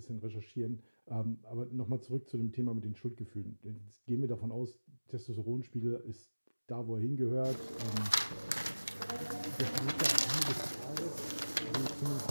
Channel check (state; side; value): inverted; both; correlation -1.00